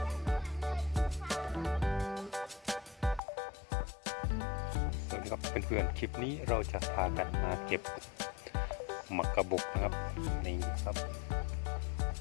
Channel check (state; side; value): drops out; right; at 3.2 s